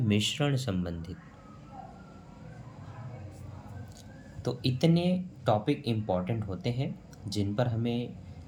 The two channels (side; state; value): both; identical; correlation 1.00